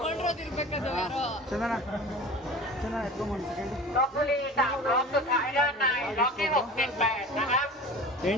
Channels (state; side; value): normal; both; correlation 0.38